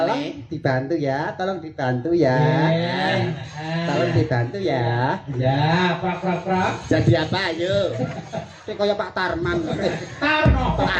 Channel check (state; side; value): identical; both; correlation 1.00